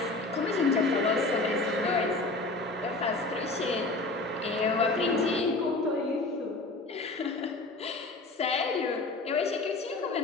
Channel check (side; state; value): right; quieter; 3.2 dB